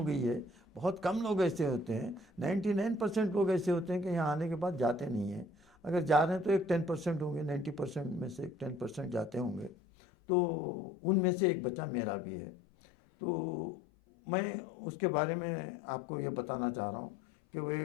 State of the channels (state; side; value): drops out; right; at 9.7 s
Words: गई है। बहुत कम लोग ऐसे होते हैं, 99% लोग ऐसे होते हैं कि यहाँ आने के बाद जाते नहीं हैं। अगर जा रहे हैं तो एक 10% होंगे, 90% में से एक 10% जाते होंगे। तो उनमें से एक बच्चा मेरा भी है। तो मैं उसके बारे में आपको ये बताना चाह रहा हूँ कि वो